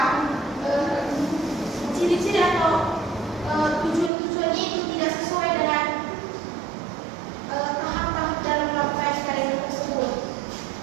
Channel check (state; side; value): drops out; left; at 4.1 s